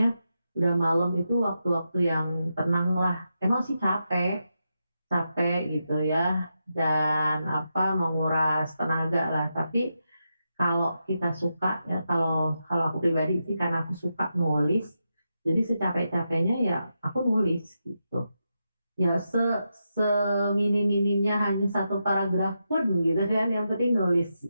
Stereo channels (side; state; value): both; inverted; correlation -0.86